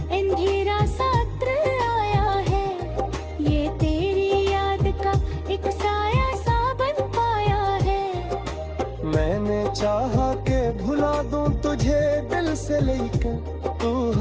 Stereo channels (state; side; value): identical; both; correlation 1.00